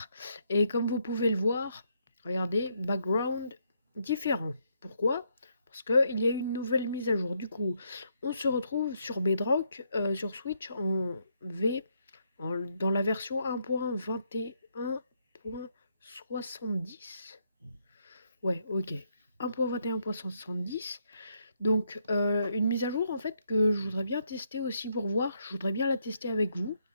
Et comme vous pouvez le voir, regardez, background différent. Pourquoi? Parce qu'il y a eu une nouvelle mise à jour. Du coup, on se retrouve sur Bedrock, sur Switch en V, dans la version 1.21.70. Ouais, ok. 1.21.70. Donc, une mise à jour en fait que je voudrais bien tester aussi pour voir. Je voudrais bien la tester avec vous.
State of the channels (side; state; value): both; inverted; correlation -0.74